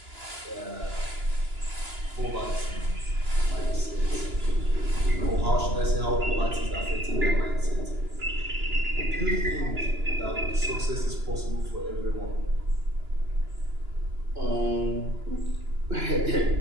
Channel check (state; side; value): late; left; 2.9 ms